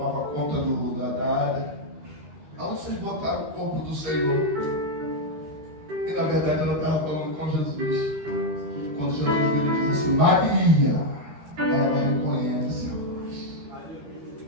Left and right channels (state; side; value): late; left; 13 ms